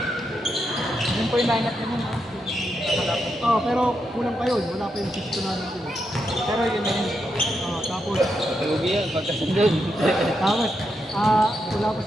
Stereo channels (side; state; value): both; normal; correlation 0.83